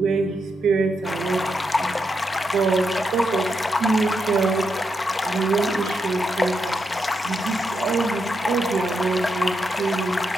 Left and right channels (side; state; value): both; normal; correlation 0.83